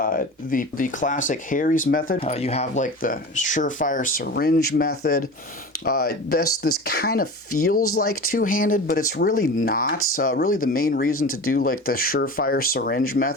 classic Harry's method, you have like the surefire syringe method. This kind of feels like two-handed, but it's really not. Really the main reason to do like the surefire syringe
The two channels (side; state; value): both; normal; correlation 0.33